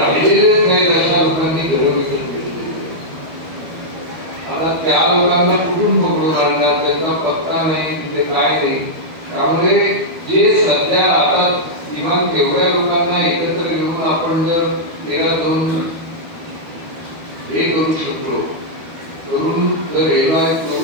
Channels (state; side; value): late; left; 12 ms